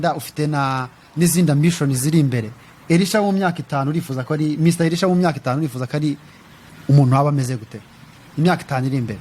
ufite n'izindi ambition ziri imbere. Elisha mu myaka 5 urifuza ko ari Mr Elisha mu myaka 5 urifuza ko ari umuntu waba ameze gute imyaka 5 iri imbere?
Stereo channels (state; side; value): identical; both; correlation 1.00